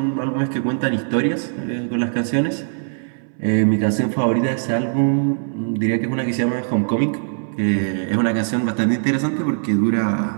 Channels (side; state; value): left; silent; 65 dB below the other